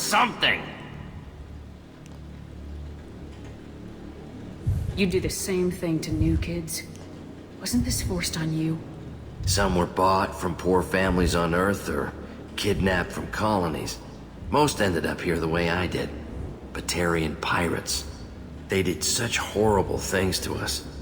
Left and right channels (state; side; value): identical; both; correlation 1.00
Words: You do the same thing to new kids. Wasn't this forced on you? Some were bought from poor families on Earth or kidnapped from colonies. Most ended up here the way I did. Batarian pirates. They did such horrible things to us.